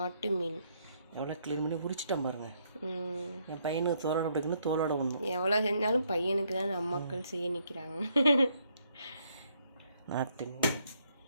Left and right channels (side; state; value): both; inverted; correlation -0.73